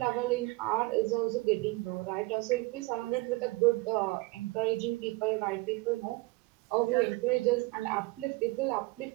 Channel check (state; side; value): quieter; left; 22.9 dB